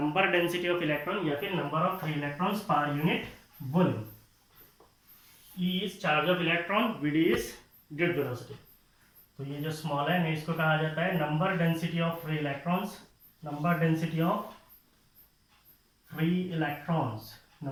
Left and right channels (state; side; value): identical; both; correlation 1.00